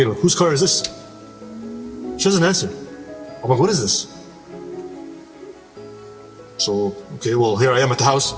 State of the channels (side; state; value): both; identical; correlation 1.00